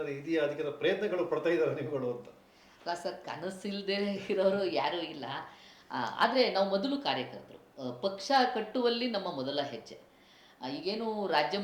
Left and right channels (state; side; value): identical; both; correlation 1.00